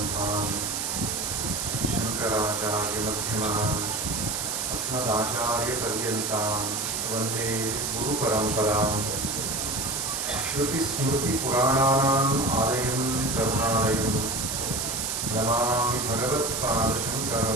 शङ्कराचार्यमध्यमाम् अस्मदाचार्यपर्यन्तां वन्दे गुरुपरम्पराम् श्रुतिस्मृतिपुराणानाम् आलयं करुणालयं नमामि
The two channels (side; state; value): right; noise; hiss, 1 dB below the sound